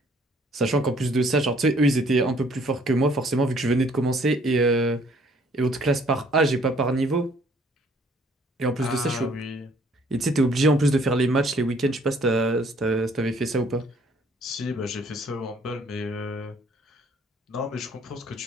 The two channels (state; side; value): normal; both; correlation 0.61